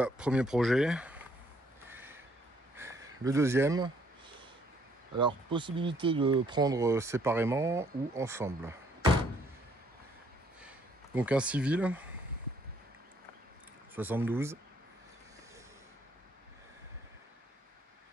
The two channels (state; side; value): normal; both; correlation 0.66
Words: premier projet. Le deuxième. Alors, possibilité de prendre séparément ou ensemble. Donc un civil, 72.